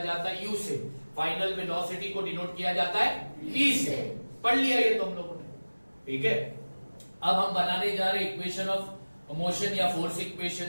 है u से, फाइनल वेलोसिटी को डिनोट किया जाता है v से। पढ़ लिया ये तो हम लोगों ने। ठीक है, अब हम बनाने जा रहे इक्वेशन ऑफ मोशन या फोर्स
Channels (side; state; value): both; inverted; correlation -1.00